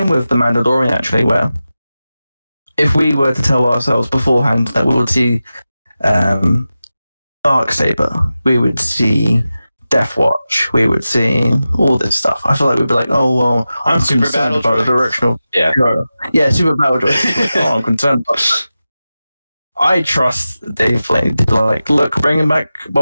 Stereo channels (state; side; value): inverted; both; correlation -0.94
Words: with The Mandalorian, actually, where if we were to tell ourselves beforehand that we would see Darksaber, we would see Death Watch, we would see all this stuff, I feel like we'd be like, oh, well, I'm Super concerned Battle about the Droid. direction of... Yeah. Super Battle Droid. Oh, I'm concerned about that. I trust Dave Filoni to be like, look, bringing back